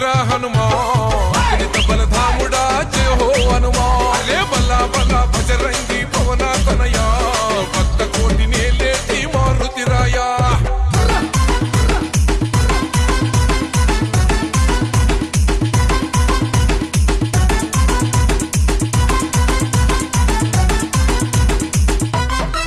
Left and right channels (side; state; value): both; identical; correlation 1.00